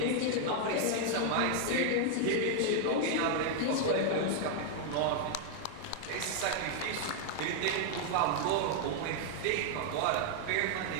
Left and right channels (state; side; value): different; both; correlation 0.00